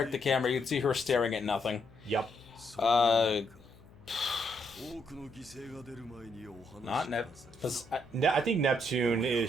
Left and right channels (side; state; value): left; noise; hum, 24 dB below the sound